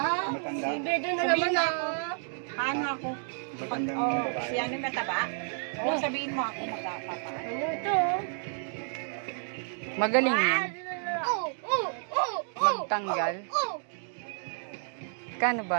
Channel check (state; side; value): silent; left; 58 dB below the other